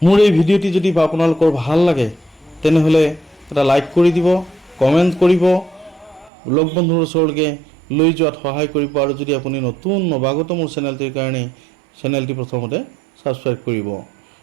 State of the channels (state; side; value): drops out; left; at 6.3 s